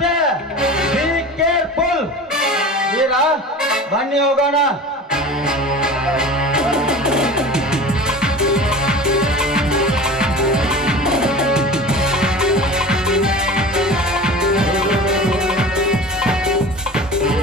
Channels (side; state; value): both; normal; correlation 0.35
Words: Be careful. ವೀರ, ಬನ್ನಿ ಹೋಗೋಣ.